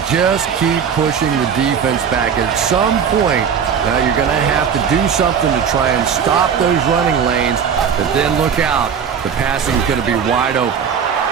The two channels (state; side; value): quieter; left; 7.2 dB